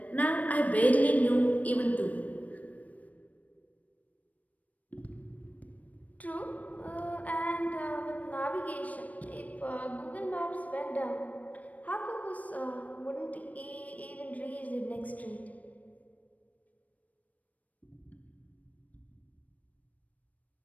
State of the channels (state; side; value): late; right; 0.071 ms